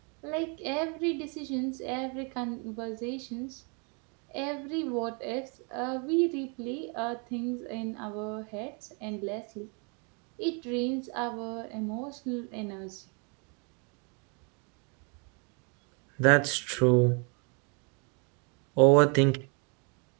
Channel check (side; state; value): left; quieter; 35.6 dB